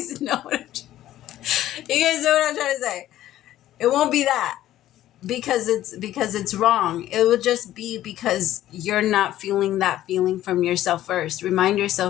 know what I'm trying to say. It won't be that because it's wrong. It will just be because you're not feeling that feeling from yourself first. Remind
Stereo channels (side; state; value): right; quieter; 13.4 dB